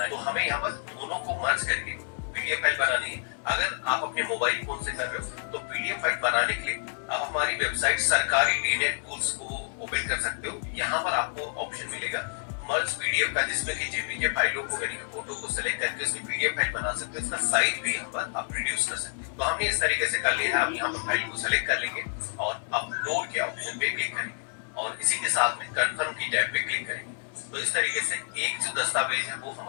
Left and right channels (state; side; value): silent; right; 59 dB below the other